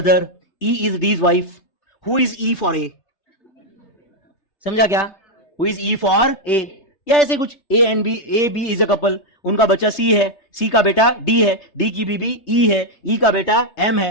E is D's wife, who is E for A, समझा क्या? Who is E for A, या ऐसे कुछ। A B is a couple, उनका बच्चा सी है, सी का बेटा डी है, डी की बीबी ई है, ई का बेटा एम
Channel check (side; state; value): right; late; 3.3 ms